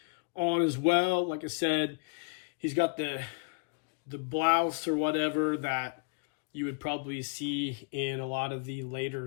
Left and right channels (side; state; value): right; quieter; 34.2 dB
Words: on as well. Like I said, he's got the blouse or whatever that you would probably see in a lot of the